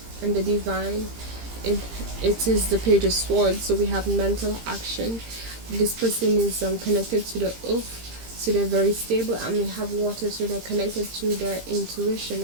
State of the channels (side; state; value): left; late; 17 ms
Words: and the divine. It is the Page of Swords, so we have mental action. This person is connected to the earth, so they're very stable, and we have water, so they're connected to their intuition